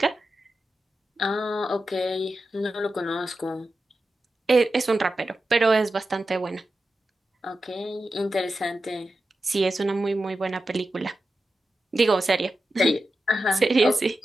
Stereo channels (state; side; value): normal; both; correlation 0.91